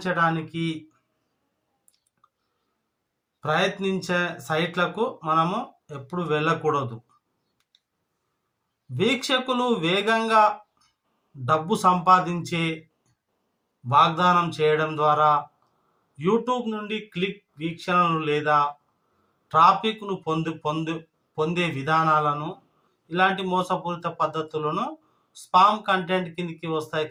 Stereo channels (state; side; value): identical; both; correlation 1.00